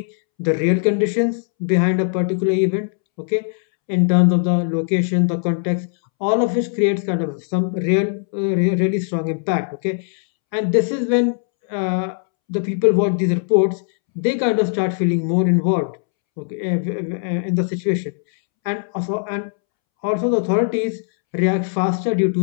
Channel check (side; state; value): right; silent; 66 dB below the other